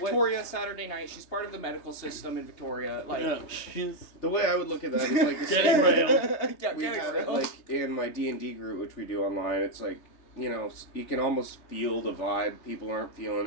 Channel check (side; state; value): right; late; 3.3 ms